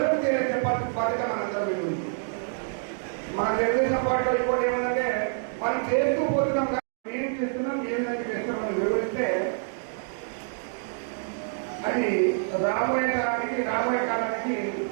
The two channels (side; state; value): left; silent; digital silence